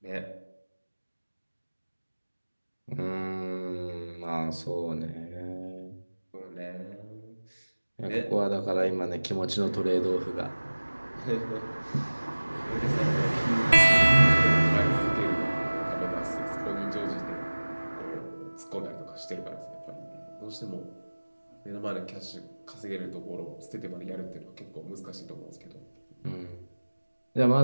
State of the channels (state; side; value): inverted; both; correlation -1.00